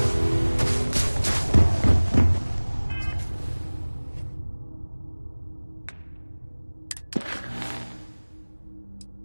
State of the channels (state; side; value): inverted; both; correlation -1.00